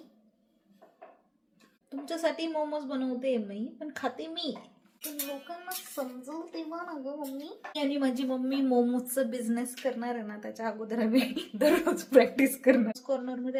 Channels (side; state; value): both; identical; correlation 1.00